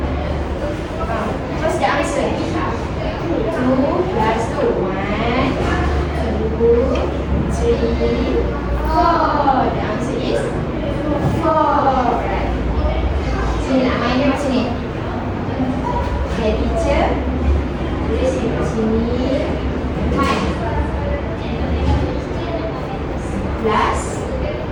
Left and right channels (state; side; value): identical; both; correlation 1.00